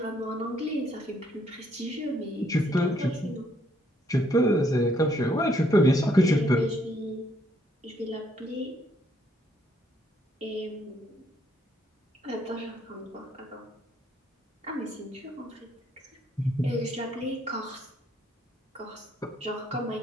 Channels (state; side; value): normal; both; correlation 0.70